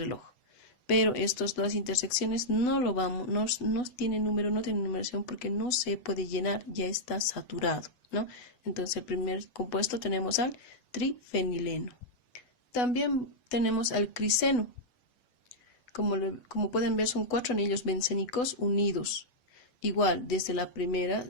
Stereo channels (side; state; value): right; late; 8.0 ms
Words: Pero estas dos intersecciones no tienen número, no tienen numeración porque no se puede llenar, ya está saturado, ¿no? Entonces el primer compuesto tenemos al trifenileno. También tenemos al criseno. Como pueden ver, son 4 anillos bencénicos unidos. Igual,